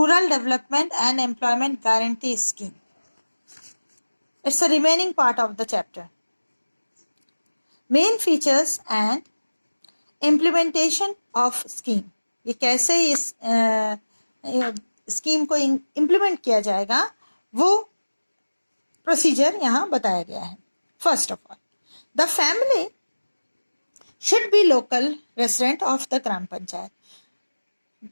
Development and Employment Guarantee Scheme. It's the remaining part of the chapter. Main features and implementation of scheme. ये कैसे इस scheme को implement किया जाएगा वो procedure यहाँ बताया गया है. First of all, the family should be local resident of the gram panchayat.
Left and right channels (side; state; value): both; inverted; correlation -1.00